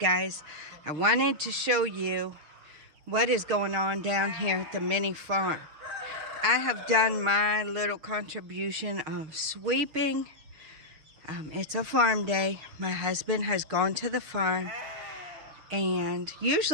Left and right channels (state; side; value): late; left; 6.4 ms